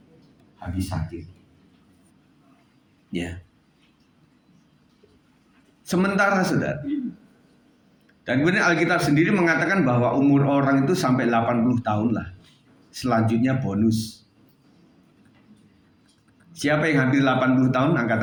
habis sakit. Ya. Sementara, saudara. Dan kemudian Alkitab sendiri mengatakan bahwa umur orang itu sampai 80 tahun lah. Selanjutnya bonus. Siapa yang hampir 80 tahun? Angkat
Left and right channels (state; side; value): identical; both; correlation 1.00